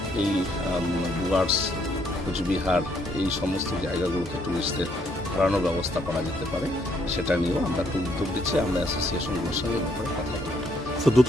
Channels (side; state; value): both; normal; correlation 0.70